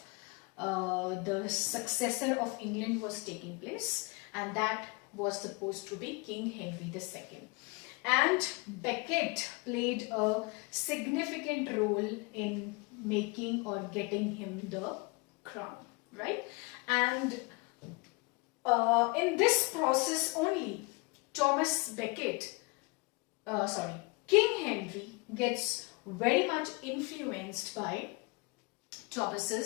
the successor of England was taking place, and that was supposed to be King Henry II. And Becket played a significant role in making or getting him the crown, right? And in this process only, King Henry gets very much influenced by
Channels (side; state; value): right; quieter; 27.5 dB